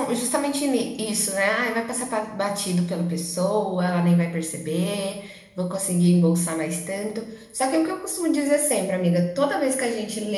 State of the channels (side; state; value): both; identical; correlation 1.00